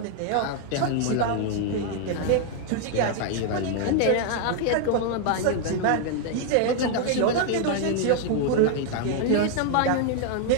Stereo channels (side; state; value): both; different; correlation 0.00